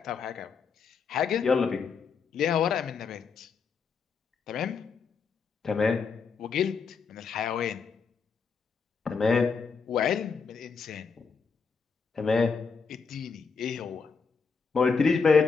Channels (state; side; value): quieter; right; 5.4 dB